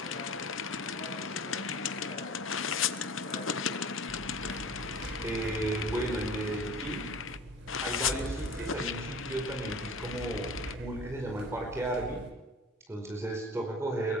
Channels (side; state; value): both; normal; correlation 0.41